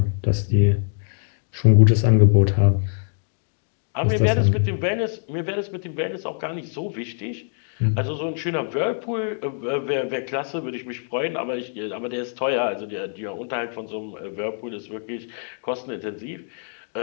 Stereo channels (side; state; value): right; silent; digital silence